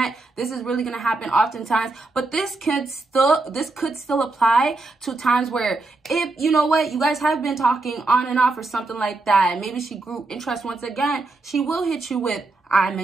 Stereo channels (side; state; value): left; quieter; 3.3 dB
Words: this is really gonna happen oftentimes. But this could still apply to times where, if you know what, you guys have been talking on and off or something like that, and maybe she grew interest once again, she will hit you with, I